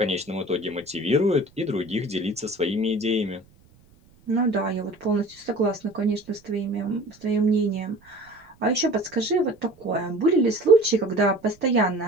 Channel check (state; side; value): noise; right; rumble, 30 dB below the sound